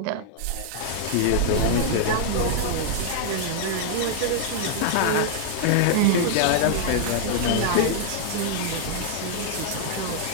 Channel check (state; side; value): different; both; correlation -0.01